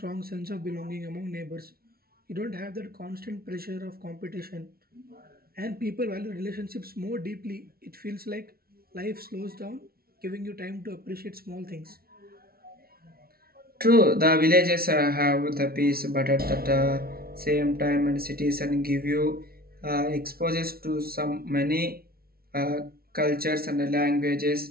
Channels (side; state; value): left; late; 0.44 ms